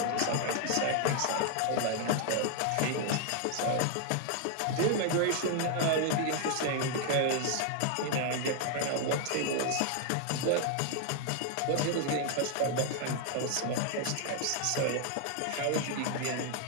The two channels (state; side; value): different; both; correlation 0.00